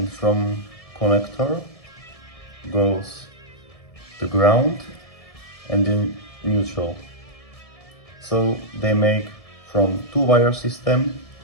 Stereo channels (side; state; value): right; late; 1.7 ms